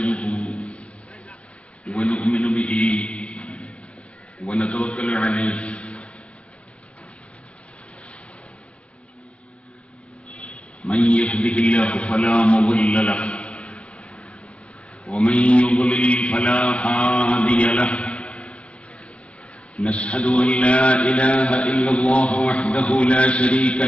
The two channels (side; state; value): right; late; 0.062 ms